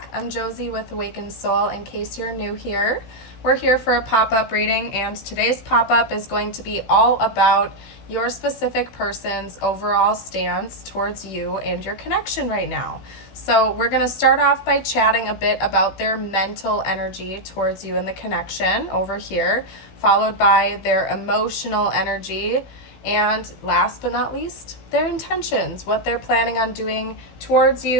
I'm Josie with Awakened Soul. In case you're new here, we're here for a pop-up reading, and today's pop-up is going to be all about your specific person's overall stance towards you and your connection right now. So we're going to start off by chatting a bit about their mental energy towards you and the connection over here, followed by their emotional energy, and last but not least, their intentions, what they're planning on doing towards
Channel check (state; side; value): late; right; 16 ms